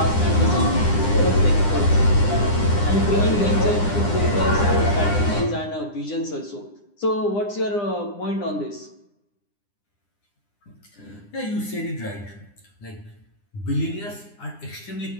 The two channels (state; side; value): late; right; 9.9 ms